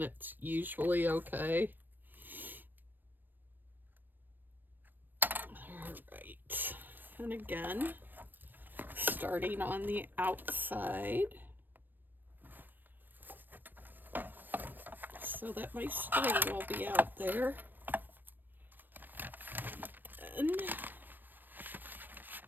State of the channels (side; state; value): left; late; 0.092 ms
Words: it's usually okay. Alright, and again, starting on the outside so that my string will be out there. And